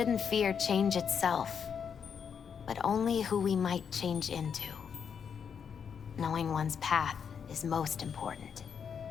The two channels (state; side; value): quieter; right; 7.0 dB